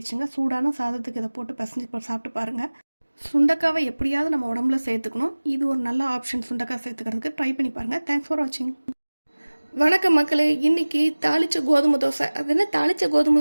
சூடான சாதத்துக்கு இதை போட்டு பிசைஞ்சு சாப்பிட்டு பாருங்கள். சுண்டக்காவை எப்படியாவது நம்ம உடம்புல சேர்த்துக்கணும். இது ஒரு நல்ல ஆப்ஷன். சுண்டக்காய் சேர்த்துக்கிறதுக்கு ட்ரை பண்ணி பாருங்கள். தேங்க்ஸ் ஃபார் வாட்சிங். வணக்கம் மக்களே. இன்றைக்கி தாளித்த கோதுமை தோசை. அது என்ன தாளித்த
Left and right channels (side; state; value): both; inverted; correlation -1.00